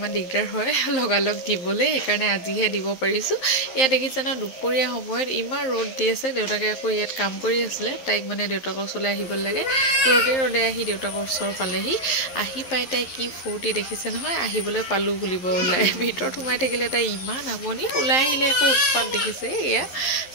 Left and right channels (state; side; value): late; right; 11 ms